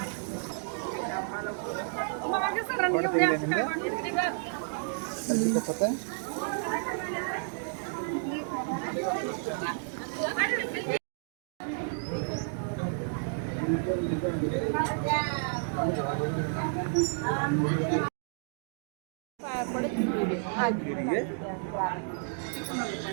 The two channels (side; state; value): left; silent; digital silence